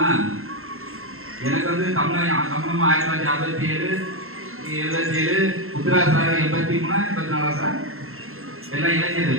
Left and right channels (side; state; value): left; late; 0.62 ms